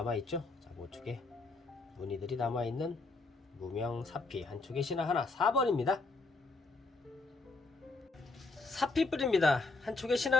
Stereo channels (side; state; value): right; quieter; 3.6 dB